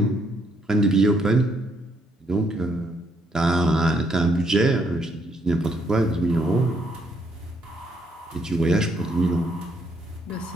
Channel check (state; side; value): normal; both; correlation 0.72